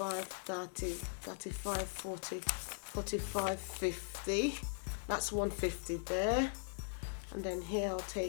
30, 35, 40, 45, 50. That's 150 there. And then here I'll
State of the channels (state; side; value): silent; right; digital silence